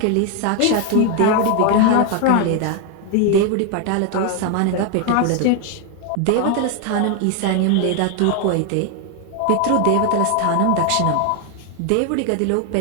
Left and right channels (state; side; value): different; both; correlation 0.01